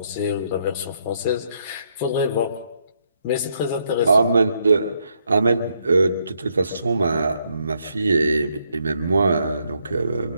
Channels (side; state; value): both; inverted; correlation -0.75